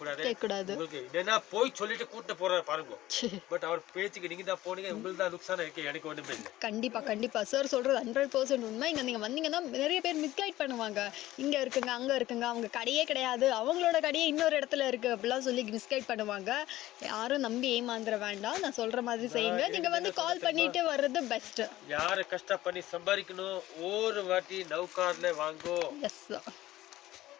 உங்களுக்கு என்னன்னா போய் சொல்லிட்டு கூட்டு போறாரு பாருங்க. பட் அவர் பேச்சுக்கு நீங்க தான் போனீங்க. உங்களுக்கு தான் நுக்சானம் இருக்கு. எனக்கு ஒண்ணுமே இல்லை. கண்டிப்பா கண்டிப்பா சார் சொல்றது 100% உண்மை. இங்க நீங்க வந்தீங்கன்னா நிறைய பேர் மிஸ்கைட் பண்ணுவாங்க. இங்க இருக்குங்க அங்க இருக்குங்க அவங்க கடையே கிடையாது அவங்களோட கடையே இன்னொரு இடத்துல இருக்கு அப்படிலாம் சொல்லி மிஸ்கைட் பண்ணுவாங்க. யாரும் நம்பி ஏமாந்துட வேண்டாம். நான் சொல்ற மாதிரி செய்யுங்க. நீங்க வந்து கால் பண்ணிட்டு வர்றது பெஸ்ட். யாரு கஷ்டம் பண்ணி சம்பாதிக்கணும் ஒரு வாட்டி நௌகார்ல வாங்கோ. எஸ்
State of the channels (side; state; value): right; quieter; 15.7 dB